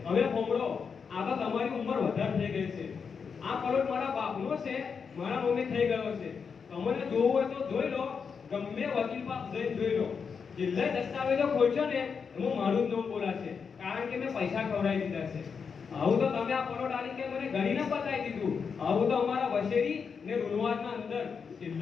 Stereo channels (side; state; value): right; quieter; 6.0 dB